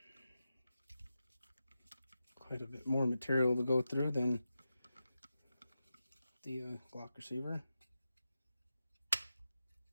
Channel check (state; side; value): inverted; both; correlation -0.90